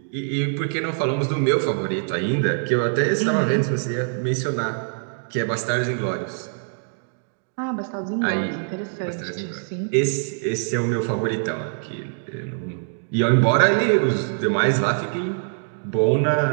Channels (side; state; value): left; silent; digital silence